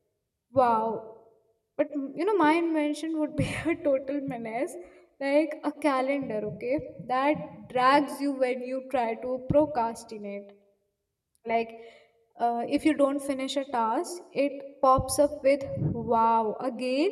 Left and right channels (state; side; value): identical; both; correlation 1.00